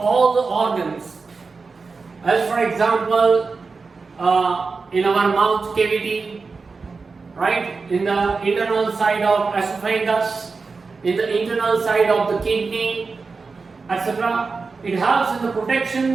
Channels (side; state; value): left; quieter; 4.4 dB